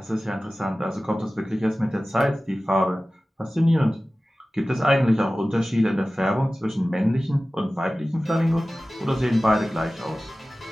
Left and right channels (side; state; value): both; normal; correlation 0.96